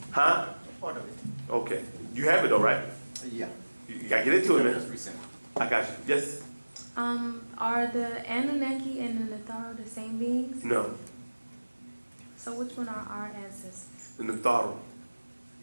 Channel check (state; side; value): inverted; both; correlation -1.00